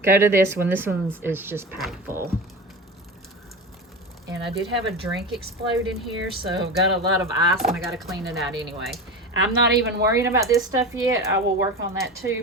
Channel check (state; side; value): normal; both; correlation 0.27